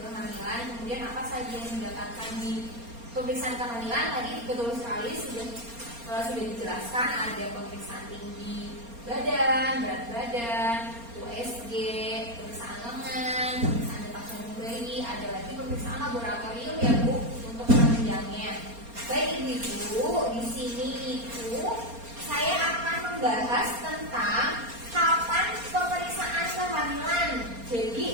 kemudian apa saja yang didapatkan di pemeriksaan kehamilan. Tadi betul sekali sudah dijelaskan, ada pemeriksaan tinggi badan, berat badan, USG, pemeriksaan lengan, pemeriksaan detak jantung bayi, ada lagi pemeriksaan laboratorium ya Bu untuk penunjangnya. Baik Ibu-ibu, di sini itu saya akan membahas tentang kapan pemeriksaan kehamilan.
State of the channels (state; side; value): late; left; 4.3 ms